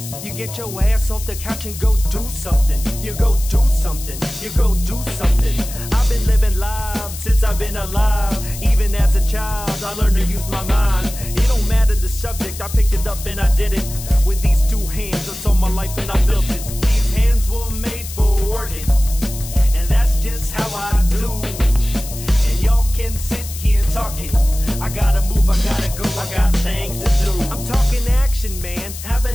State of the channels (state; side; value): noise; left; hiss, 12 dB below the sound